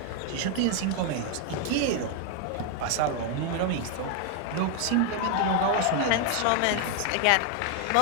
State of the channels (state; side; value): different; both; correlation 0.00